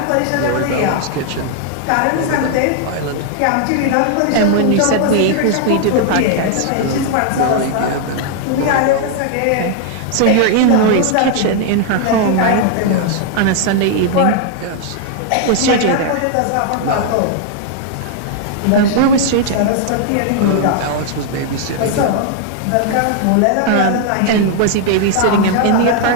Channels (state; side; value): different; both; correlation 0.00